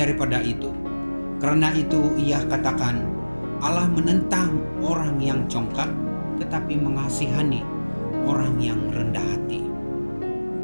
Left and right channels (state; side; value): inverted; both; correlation -1.00